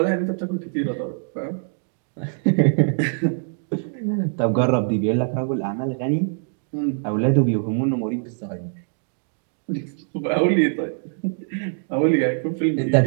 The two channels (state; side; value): silent; left; 63 dB below the other